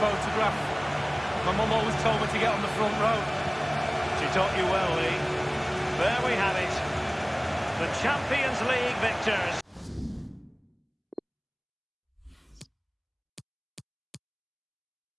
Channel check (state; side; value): identical; both; correlation 1.00